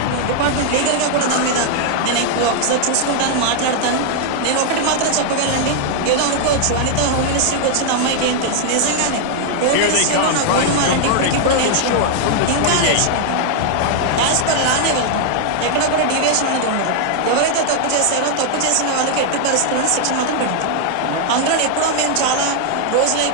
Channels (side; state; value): both; different; correlation 0.00